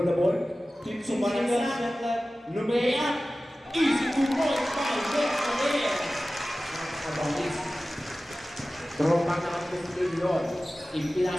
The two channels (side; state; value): both; normal; correlation 0.96